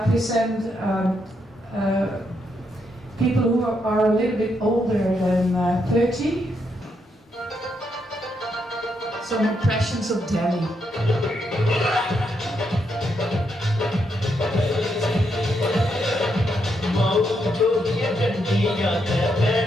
people who are a little bit older than 30. Some impressions of Delhi.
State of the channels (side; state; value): both; normal; correlation 0.79